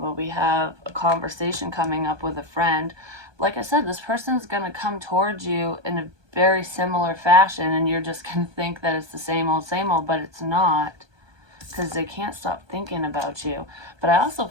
we have a conversation coming up with a friend. Like I said, this person's going to come towards you in a very similar fashion, and you're just going to think that it's the same old, but it's not, because they can't stop thinking about you. But I also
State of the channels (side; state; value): left; late; 1.2 ms